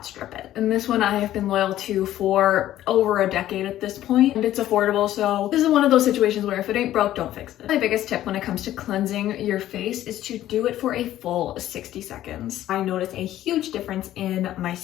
strip it. And this one I have been loyal to for over a decade at this point, and it's affordable, so this is one of those situations where if it ain't broke, don't fix it. My biggest tip when it comes to cleansing your face is to do it for a full 60 seconds. I notice a huge difference in my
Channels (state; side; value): quieter; right; 13.3 dB